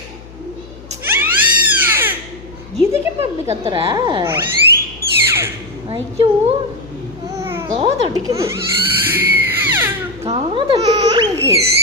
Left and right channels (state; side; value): noise; left; hum, 19 dB below the sound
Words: இதுக்கு இப்போ இப்படி கத்துற? ஐயோ காதடிக்குது எனக்கு.